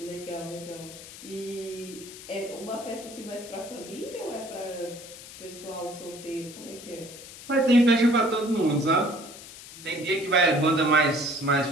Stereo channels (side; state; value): left; noise; hiss, 15 dB below the sound